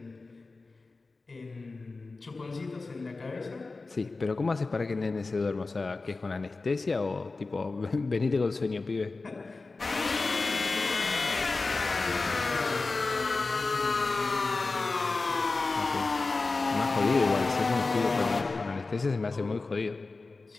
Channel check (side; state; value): right; quieter; 3.7 dB